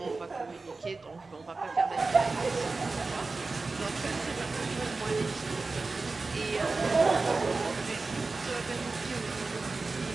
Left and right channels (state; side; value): quieter; left; 3.8 dB